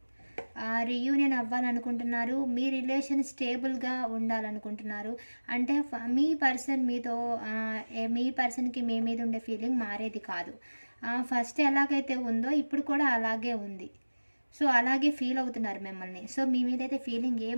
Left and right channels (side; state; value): both; inverted; correlation -1.00